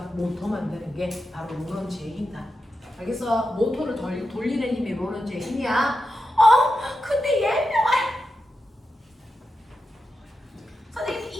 모터 만드는 게 바로 로런츠의 힘이다. 알겠어? 모터를 돌리는 힘이 로런츠의 힘이야. 근데 예명할 선생님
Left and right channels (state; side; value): normal; both; correlation 0.89